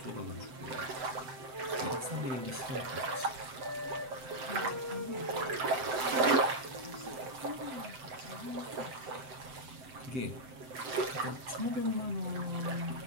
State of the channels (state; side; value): late; left; 7.8 ms